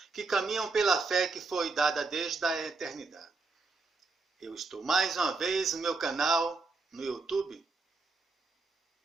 que caminham pela fé que foi dada desde a eternidade. Eu estou mais uma vez no meu canal, no YouTube,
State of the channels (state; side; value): quieter; left; 3.9 dB